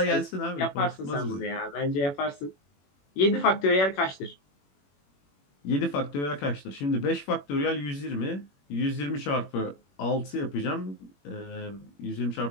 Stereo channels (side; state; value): right; late; 21 ms